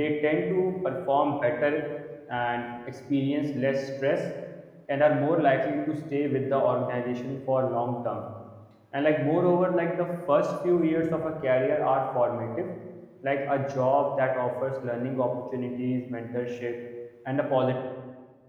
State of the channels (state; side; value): identical; both; correlation 1.00